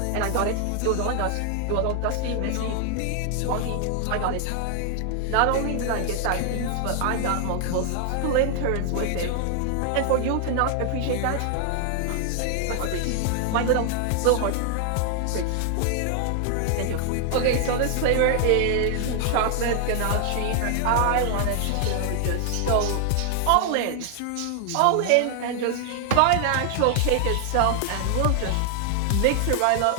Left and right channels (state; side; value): different; both; correlation 0.00